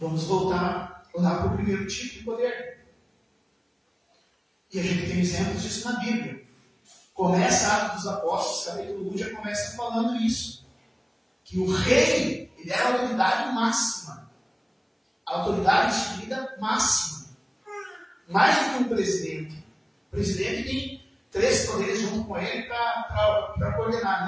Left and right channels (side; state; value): both; identical; correlation 1.00